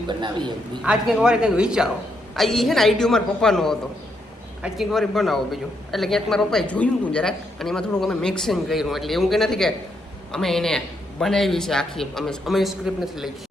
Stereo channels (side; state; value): both; normal; correlation 0.78